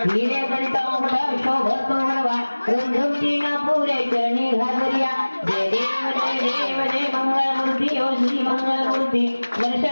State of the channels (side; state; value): both; inverted; correlation -1.00